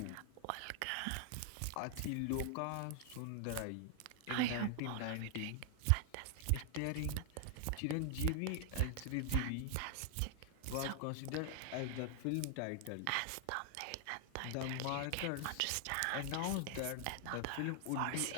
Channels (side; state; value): both; different; correlation 0.00